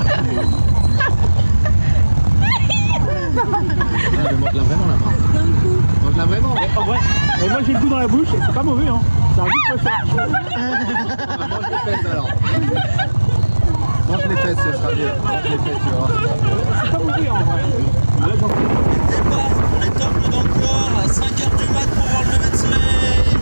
Mange-la vraiment la main. Mange-la vraiment. En vrai, moi j'ai le goût dans la bouche et c'est pas mauvais, hein. C'est un goût de poisson. Mange les fesses alors. Mange les fesses, ce sera mieux. Mange les fesses, tu vois. C'est pas mauvais en vrai. Là, j'en Départ pour les temples d'Angkor à 5h du mat pour voir le lever de soleil.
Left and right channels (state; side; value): inverted; both; correlation -1.00